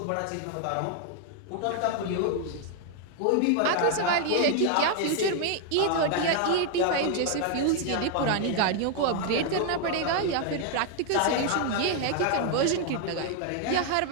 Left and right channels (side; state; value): both; different; correlation 0.00